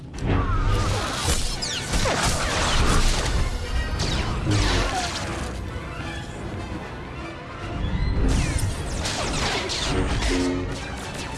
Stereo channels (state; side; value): identical; both; correlation 1.00